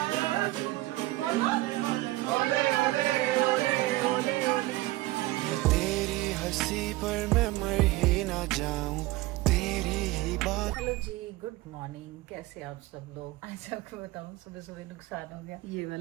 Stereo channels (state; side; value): quieter; left; 18.8 dB